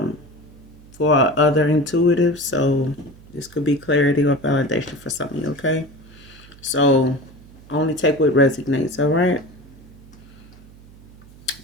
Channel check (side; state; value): right; noise; hum, 22 dB below the sound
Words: for other intuitives. So this could be clarity or validation for some of you, okay? So only take what resonates, all right?